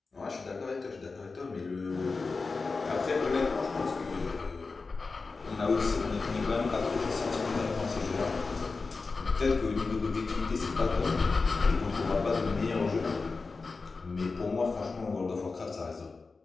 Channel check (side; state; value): right; quieter; 4.2 dB